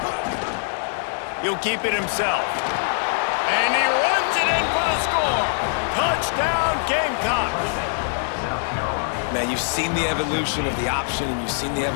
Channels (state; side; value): silent; right; digital silence